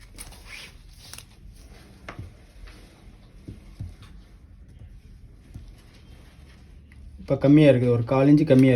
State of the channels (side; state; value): both; identical; correlation 1.00